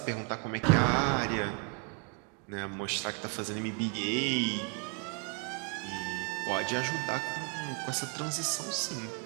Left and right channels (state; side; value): quieter; left; 35.7 dB